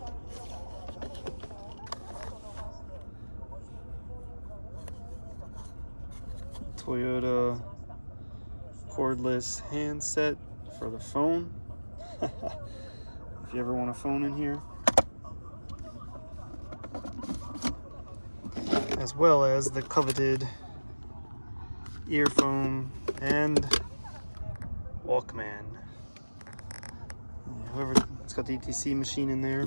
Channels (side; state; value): both; inverted; correlation -1.00